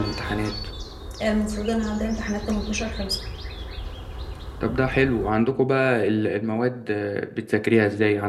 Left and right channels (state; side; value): identical; both; correlation 1.00